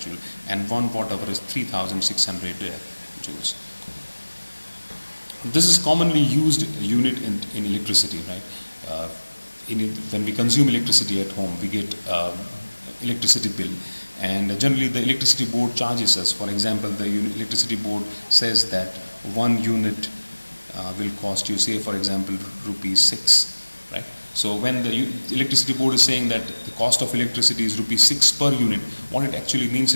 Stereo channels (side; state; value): both; inverted; correlation -1.00